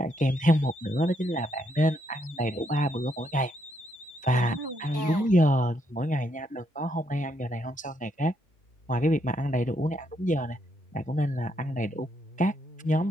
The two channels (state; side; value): normal; both; correlation 0.75